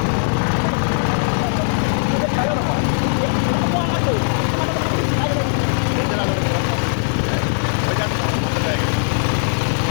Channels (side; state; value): right; silent; 66 dB below the other